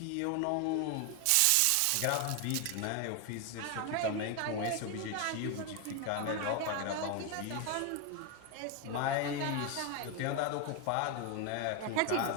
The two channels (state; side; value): different; both; correlation 0.01